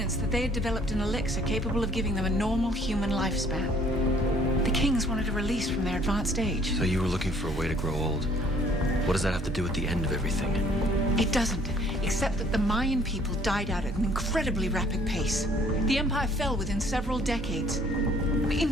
that they had developed an elixir capable of giving them a normal human lifespan. The kings wanted a release from their advanced age. So you were looking for a way to grow old. What does that have to do with the end of everything? It doesn't, except that the Mayan people died out at an incredibly rapid pace. The empire fell within several decades.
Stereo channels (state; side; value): normal; both; correlation 0.59